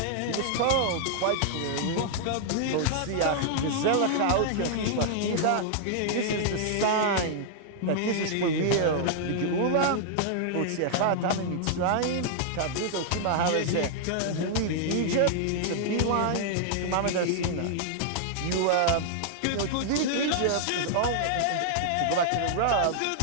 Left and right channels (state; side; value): different; both; correlation -0.01